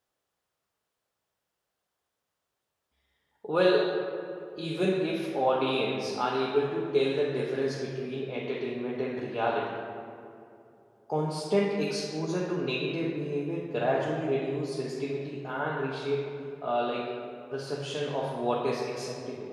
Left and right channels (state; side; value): identical; both; correlation 1.00